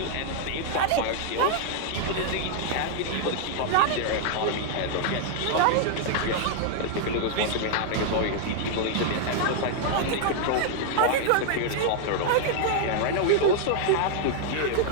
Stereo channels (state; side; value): different; both; correlation 0.00